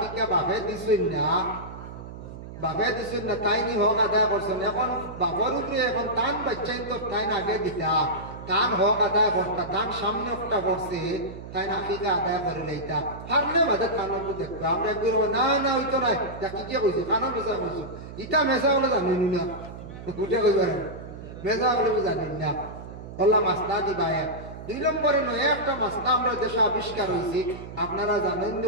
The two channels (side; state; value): right; noise; hum, 12 dB below the sound